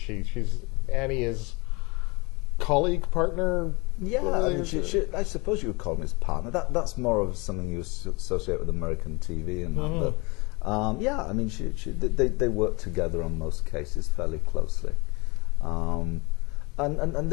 She's Annie's colleague, partner. Yeah, I mean, I suppose you would call him his partner. That's more of something you associate with American TV and that. But yeah, I mean, they work together on most cases fairly closely. And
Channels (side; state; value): right; quieter; 26.9 dB